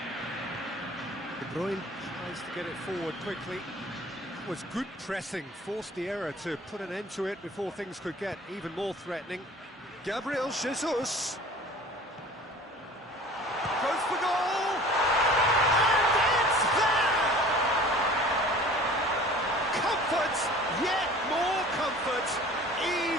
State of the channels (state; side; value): normal; both; correlation 0.45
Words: De Bruyne tries to get it forward quickly. Was good pressing, forced the error to put an end to it before things could get even more threatening. Gabriel Jesus goes for goal, and it's there! Comfort, yet more comfort,